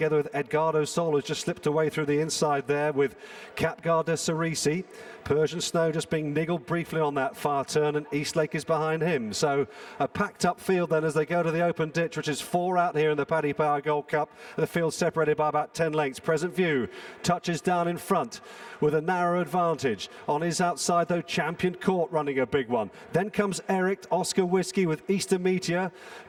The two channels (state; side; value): identical; both; correlation 1.00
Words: with Edgardo Sol, who's just slipped away through the inside there with Caid Du Berlais. Persian Snow just being niggled briefly on that far turn, and Eastlake is behind him. So a packed up field then as they go to the open ditch, which is 4 out here in the Paddy Power Gold Cup. The field separated by about 10 lengths. Present View touches down in front with a narrow advantage. On his outside though, Champion Court running a big one. Then comes Eric, Oscar Whiskey with Easter Meteor.